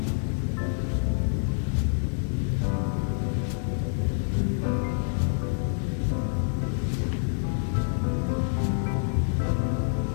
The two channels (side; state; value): right; silent; digital silence